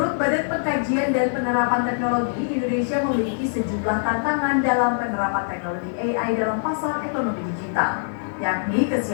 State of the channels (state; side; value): silent; right; digital silence